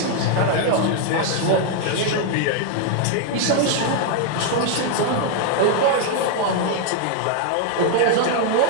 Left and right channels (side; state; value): both; different; correlation 0.00